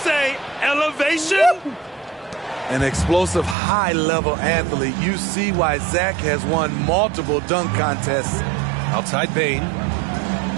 elevation? An explosive, high-level athlete. You see why Zach has won multiple dunk contests. Outside Bain.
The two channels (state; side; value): drops out; left; at 3.6 s